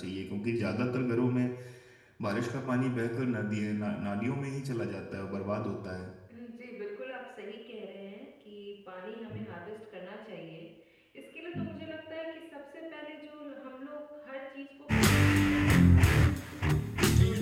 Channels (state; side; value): identical; both; correlation 1.00